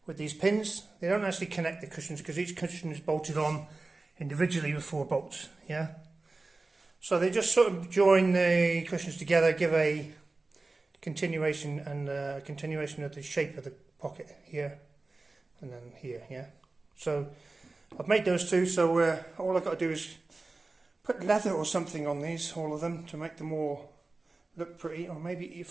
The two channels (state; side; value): quieter; left; 3.4 dB